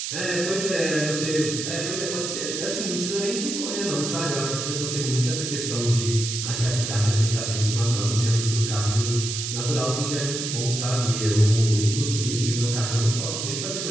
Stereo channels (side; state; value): right; noise; hiss, 4 dB below the sound